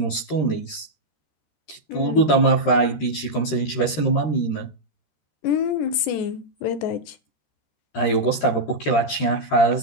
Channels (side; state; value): right; late; 13 ms